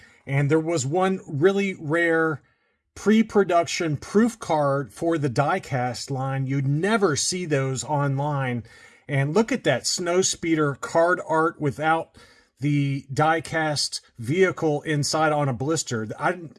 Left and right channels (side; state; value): both; identical; correlation 1.00